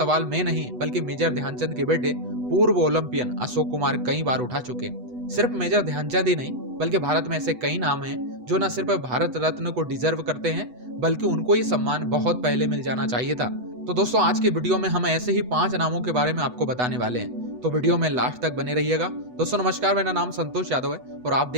मैं नहीं बल्कि मेजर ध्यानचंद के बेटे पूर्व ओलंपियन अशोक कुमार कई बार उठा चुके। सिर्फ मेजर ध्यानचंद ही नहीं बल्कि भारत में ऐसे कई नाम हैं जो न सिर्फ भारत रत्न को डिजर्व करते हैं बल्कि उनको ये सम्मान बहुत पहले मिल जाना चाहिए था। तो दोस्तों, आज की वीडियो में हम ऐसे ही 5 नामों के बारे में आपको बताने वाले हैं, तो वीडियो में लास्ट तक बने रहिएगा। दोस्तों नमस्कार, मेरा नाम संतोष यादव है और आप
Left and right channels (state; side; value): late; left; 8.1 ms